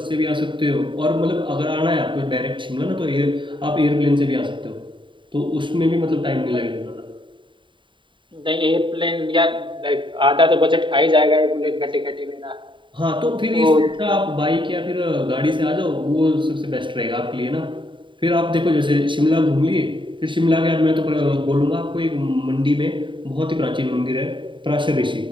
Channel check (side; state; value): left; late; 0.24 ms